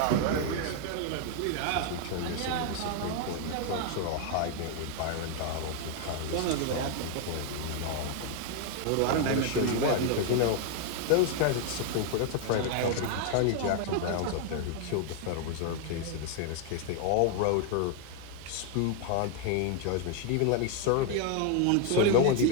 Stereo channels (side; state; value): both; different; correlation 0.00